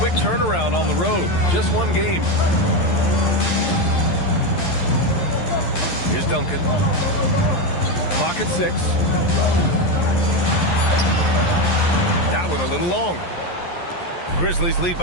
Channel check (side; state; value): right; late; 11 ms